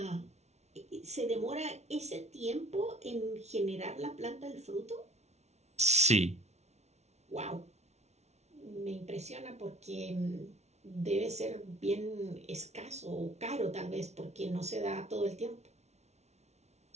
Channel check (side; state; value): left; late; 0.32 ms